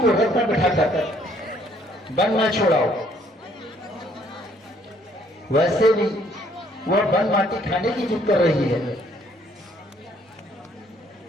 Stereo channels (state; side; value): normal; both; correlation 0.64